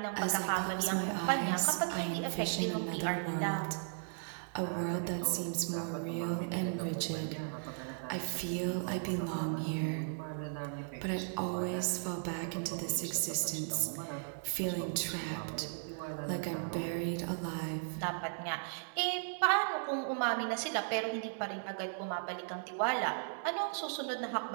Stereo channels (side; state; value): left; silent; digital silence